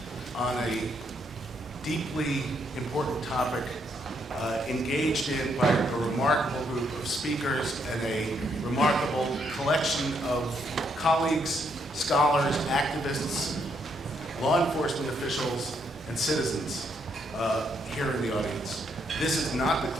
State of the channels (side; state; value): both; normal; correlation 0.74